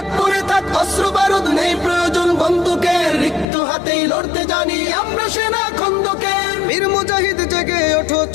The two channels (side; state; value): right; drops out; at 3.5 s